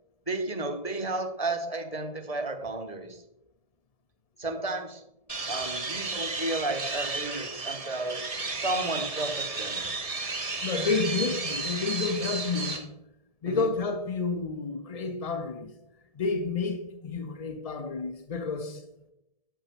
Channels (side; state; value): right; late; 1.7 ms